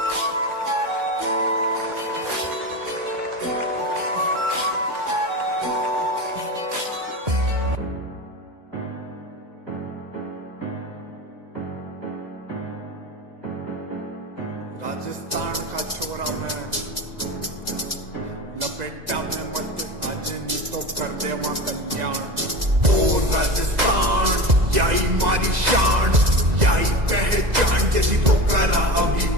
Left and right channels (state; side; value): late; left; 2.0 ms